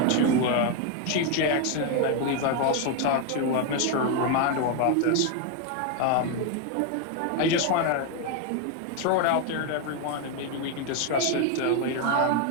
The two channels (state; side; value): different; both; correlation 0.01